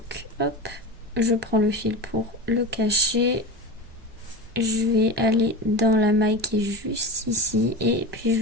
hop, je prends le fil pour le cacher. Je vais aller dans la maille qui est juste ici et puis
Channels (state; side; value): normal; both; correlation 0.26